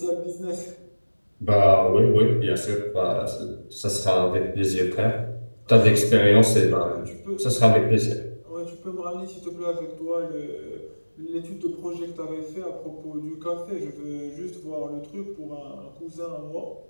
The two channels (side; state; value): both; inverted; correlation -1.00